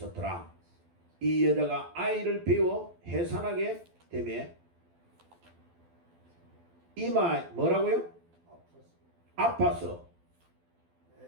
이 여자가 아이를 배워 해산하게 되매 이마 뭐라고요? 아파서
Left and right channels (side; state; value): left; late; 12 ms